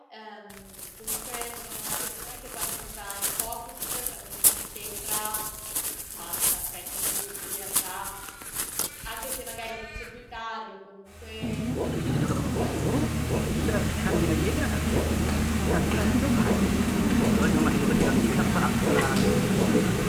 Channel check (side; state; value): both; identical; correlation 1.00